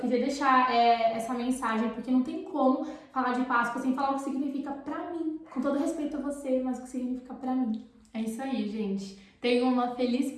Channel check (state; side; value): identical; both; correlation 1.00